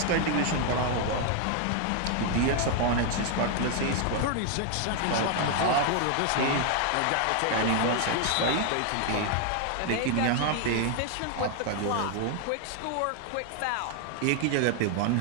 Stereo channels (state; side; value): different; both; correlation 0.00